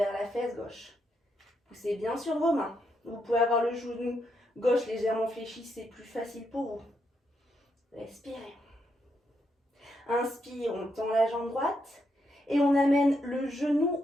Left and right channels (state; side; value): normal; both; correlation 0.80